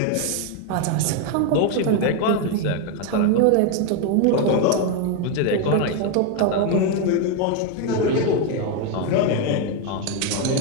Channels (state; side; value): different; both; correlation 0.02